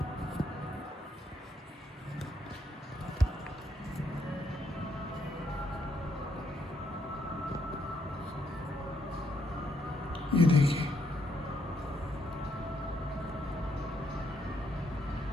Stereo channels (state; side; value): normal; both; correlation 0.75